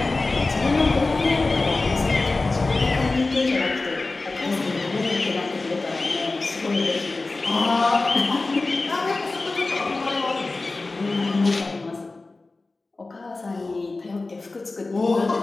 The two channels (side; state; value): right; quieter; 3.4 dB